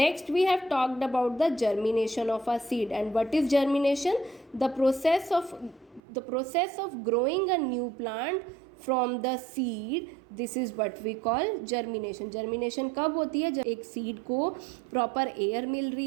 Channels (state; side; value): drops out; left; at 6.0 s